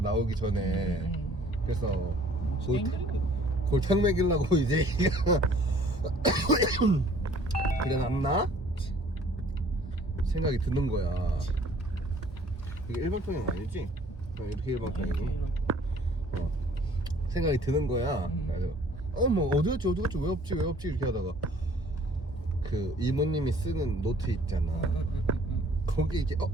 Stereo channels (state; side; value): normal; both; correlation 0.55